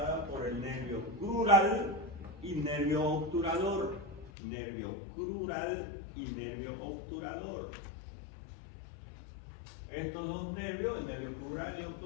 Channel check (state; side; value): drops out; right; at 4.3 s